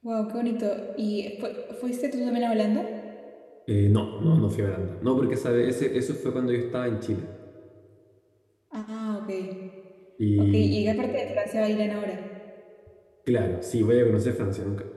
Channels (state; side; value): identical; both; correlation 1.00